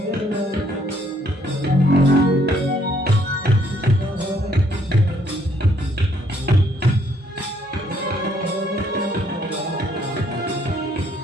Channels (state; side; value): normal; both; correlation 0.68